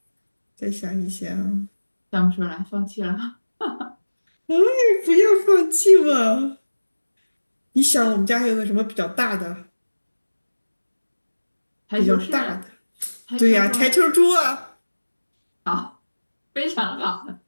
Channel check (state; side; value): inverted; both; correlation -1.00